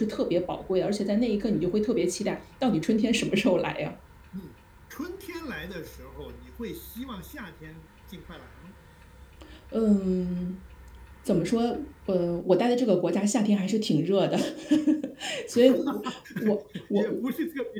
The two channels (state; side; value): identical; both; correlation 1.00